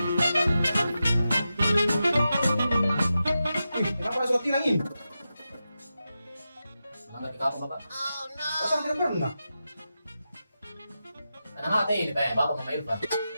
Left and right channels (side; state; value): both; inverted; correlation -0.91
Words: Kenapa ada surat tilang ini? Melanggar di kamu, Bapak. Pasang tidak pernah. Karena mati ini kayak Bapak sama Irfan.